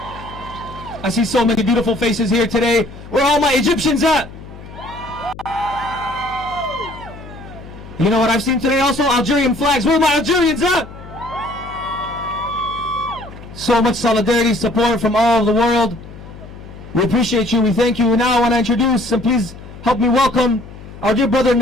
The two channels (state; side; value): noise; left; hum, 16 dB below the sound